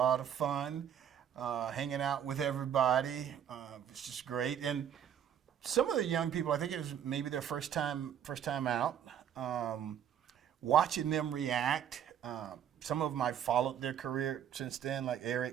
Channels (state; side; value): quieter; left; 9.3 dB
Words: of fun. Hanging out with everybody was just great. And some of the young people, I think it was maybe their first time out. Watching them react. Some of them I followed their career since then, like